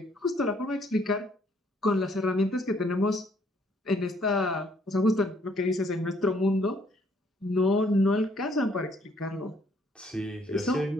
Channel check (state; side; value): normal; both; correlation 0.65